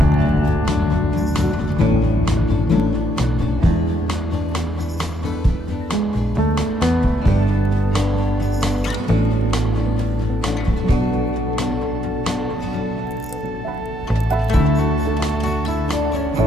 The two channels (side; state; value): both; normal; correlation 0.74